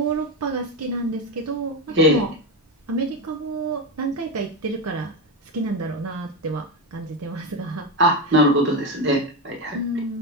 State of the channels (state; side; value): normal; both; correlation 0.13